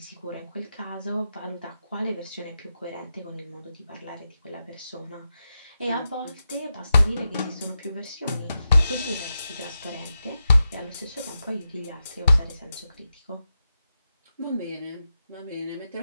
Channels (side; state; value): both; inverted; correlation -0.89